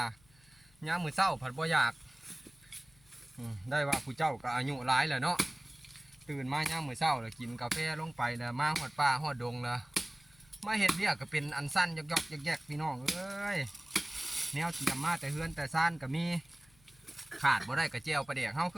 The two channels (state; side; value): noise; left; hum, 29 dB below the sound